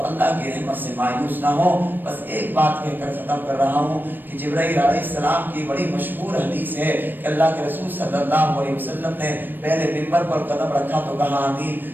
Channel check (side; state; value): left; late; 0.092 ms